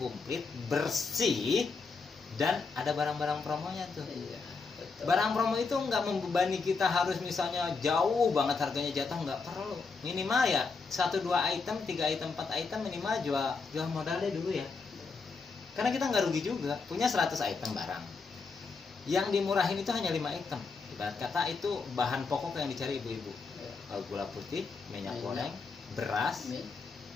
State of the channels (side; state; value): right; quieter; 4.6 dB